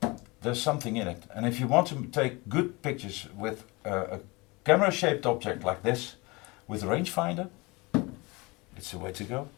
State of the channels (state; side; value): quieter; right; 25.2 dB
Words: there's something in it. And if you want to take good pictures with a camera-shaped object like this, with a rangefinder, it's the way to go.